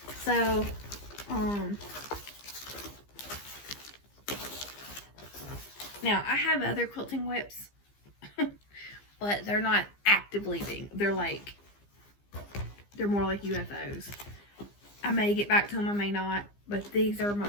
So, now I have other quilting whips, but they're not actively being, they're more like UFOs. I may get back to them, I may not, but these are my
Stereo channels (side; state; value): right; late; 15 ms